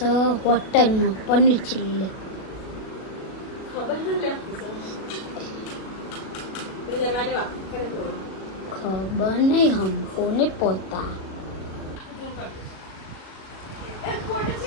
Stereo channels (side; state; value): right; late; 37 ms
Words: હોટલમાં પનીર ચીલ્લી. ખબર નહીં હમકો ને પોતા.